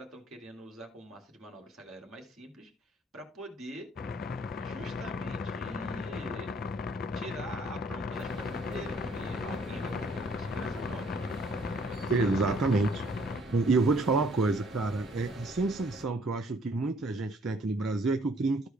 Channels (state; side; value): normal; both; correlation 0.62